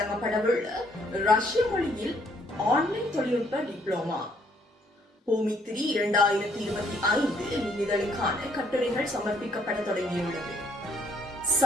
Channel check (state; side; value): normal; both; correlation 0.67